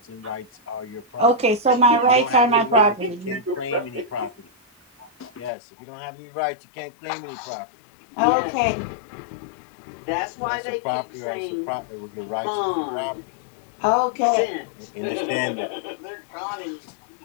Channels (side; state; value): right; drops out; at 5.5 s